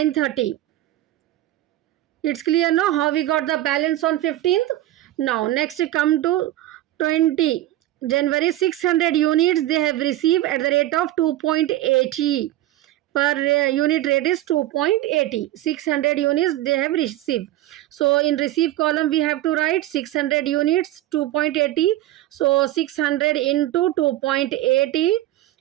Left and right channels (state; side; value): quieter; left; 14.8 dB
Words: It's clear now how we got the balance on 15th. Now next come to 20 January, 600 units they have received at the rate of 2.80. Per unit rate is 2.80. 600 units they have received. So in receive column we have to write 600 units 2.80. So 600 into 2.80